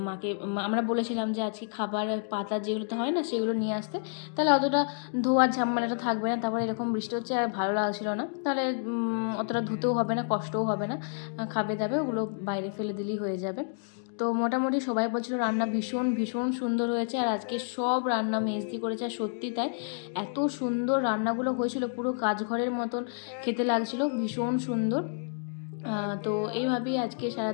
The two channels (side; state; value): right; silent; digital silence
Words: মাকে আমরা বলেছিলাম যে আজকে খাবার পাতা যেগুলোতে হয় না সেগুলো নিয়ে আসতে, তাহলে অতটা ধোয়ার ঝামেলাটা থাকবে না। তারপরে এরকম বৃষ্টি হচ্ছে আর ভালো লাগছিল না, তাহলে অতটা ধুতেও হবে না, কষ্টও হবে না, খাবে দাবে ওগুলো বাইরে ফেলে দিলেই হয়ে যাবে। তো মোটামুটি সবাই বলছিল রান্না ভীষণ ভীষণ সুন্দর হয়েছে, আর আজকে সব রান্না মেজদি করেছে। আর সত্যি তাই, এত সুন্দর রান্নাগুলো হয়েছিল, পুরো কাজঘরের মতন খেতে লাগছিল, ভীষণ সুন্দর। তো এইভাবেই আজকে